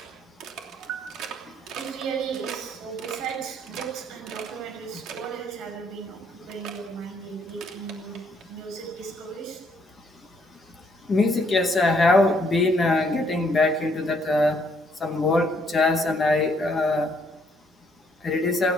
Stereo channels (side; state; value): both; normal; correlation 0.68